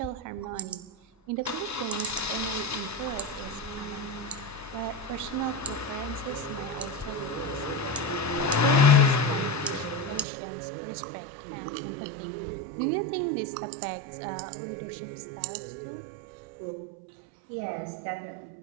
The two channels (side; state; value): left; drops out; at 10.2 s